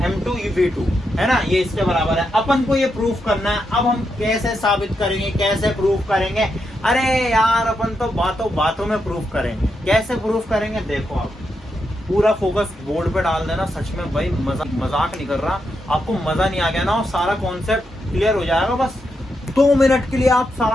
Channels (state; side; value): normal; both; correlation 0.83